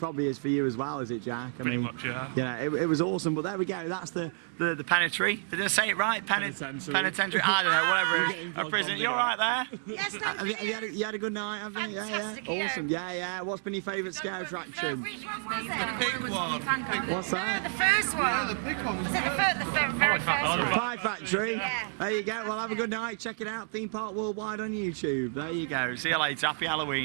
is for you as well, is it, Jack? Pretty much, yeah. Yeah, it was awesome, but there we go. That's the penitentiary. Did I say it right? Penitentiary. I don't know, whatever it is. A prison. You all right there? Yes, thank you. You had a good night, haven't you? Fantastic, Yeah. Awesome. Yeah. What's been your favourite scare attraction? Which one was it? The pig one. What's that? The first one. Yeah, the pig one was Was it the very first one? Pie Factory. Yeah. There you go. Well, have a good night. Check it out. Theme Park Worldwide on YouTube. There you go. See you later. Happy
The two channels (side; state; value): left; silent; digital silence